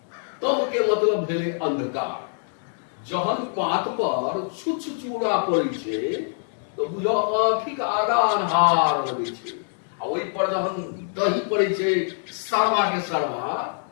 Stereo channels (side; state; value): right; silent; digital silence